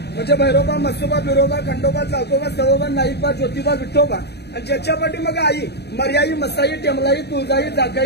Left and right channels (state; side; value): late; right; 0.48 ms